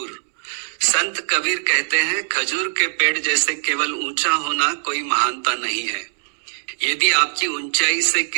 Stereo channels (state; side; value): silent; left; 65 dB below the other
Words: संत कबीर कहते हैं खजूर के पेड़ जैसे केवल ऊंचा होना कोई महानता नहीं है। यदि आपकी ऊंचाई से